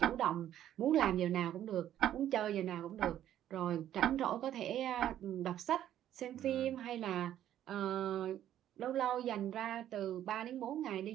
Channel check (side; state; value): left; quieter; 11.5 dB